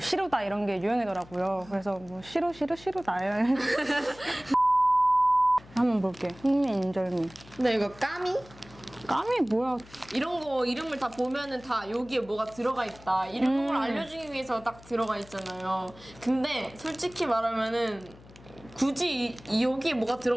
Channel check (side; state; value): left; noise; hum, 22 dB below the sound